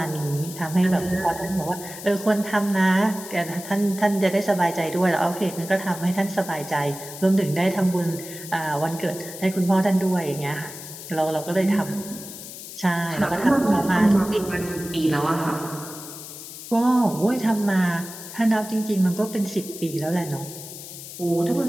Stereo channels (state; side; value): noise; left; hiss, 12 dB below the sound